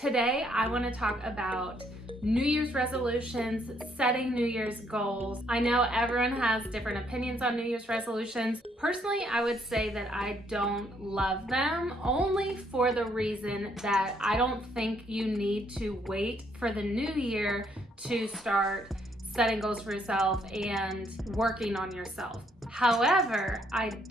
I want to talk about New Year's resolutions, setting New Year's goals. I know everyone has different opinions on New Year's resolutions. Personally, I would say that I don't love them, only for the reason that I don't think you need to wait for the new year to start setting goals for yourself and working on yourself. However, I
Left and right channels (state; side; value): normal; both; correlation 0.70